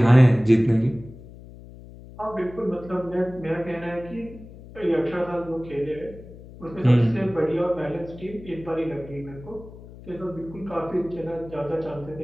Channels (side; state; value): left; noise; hum, 17 dB below the sound